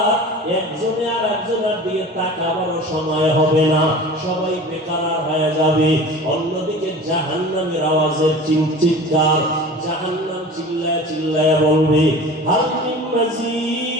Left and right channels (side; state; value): both; normal; correlation 0.38